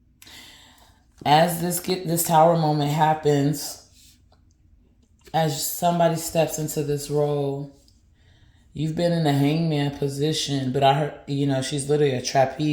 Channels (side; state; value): both; identical; correlation 1.00